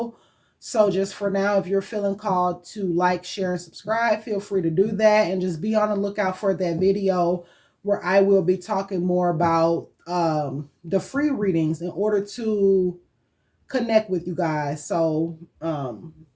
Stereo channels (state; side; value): identical; both; correlation 1.00